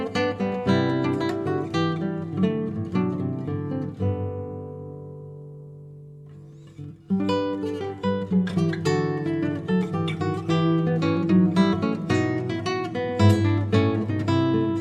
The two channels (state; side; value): identical; both; correlation 1.00